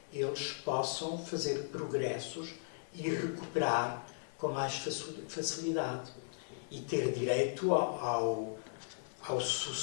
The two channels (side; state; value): right; silent; 53 dB below the other